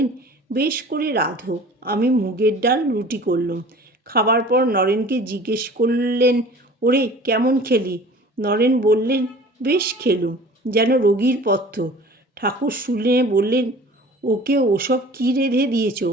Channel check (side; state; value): both; normal; correlation 0.45